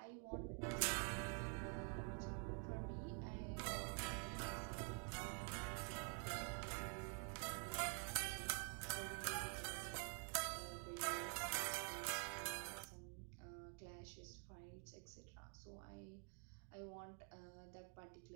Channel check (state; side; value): quieter; left; 39.6 dB